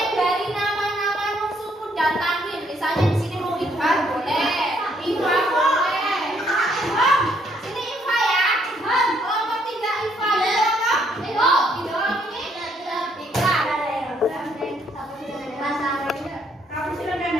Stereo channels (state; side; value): normal; both; correlation 0.69